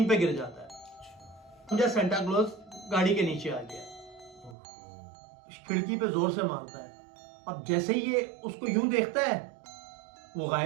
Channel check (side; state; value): left; drops out; at 4.5 s